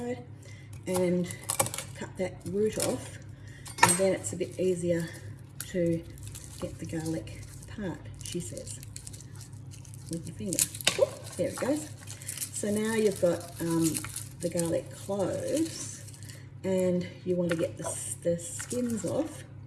and cut that root off, and then it's a bit easier to get the garlic apart, she says, with your finger. Ooh, there it goes. So now you've got the garlic cloves, and you want to get the skins off,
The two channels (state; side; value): identical; both; correlation 1.00